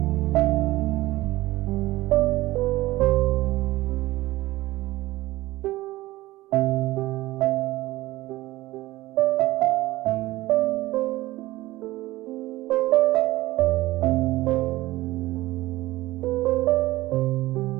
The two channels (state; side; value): quieter; left; 18.0 dB